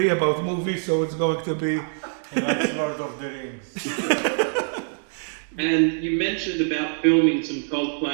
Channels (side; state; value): left; silent; 62 dB below the other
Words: about movies, so it's going to be... He likes Lord of the Rings. And you mentioned about filming some